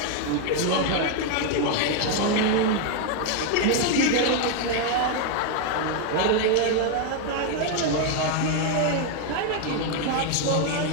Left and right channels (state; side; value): different; both; correlation 0.01